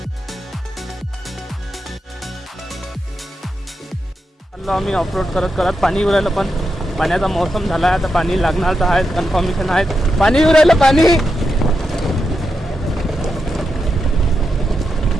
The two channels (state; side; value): normal; both; correlation 0.86